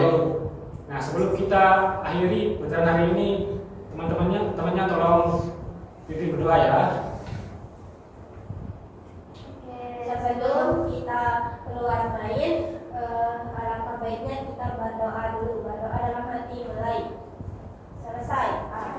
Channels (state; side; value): identical; both; correlation 1.00